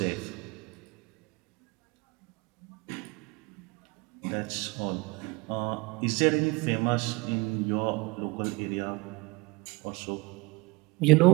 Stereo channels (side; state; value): left; quieter; 25.4 dB